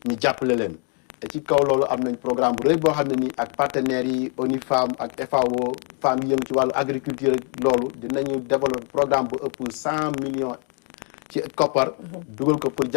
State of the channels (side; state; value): right; quieter; 38.4 dB